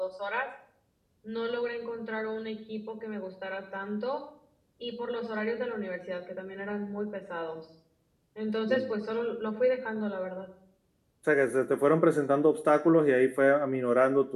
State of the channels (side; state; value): both; identical; correlation 1.00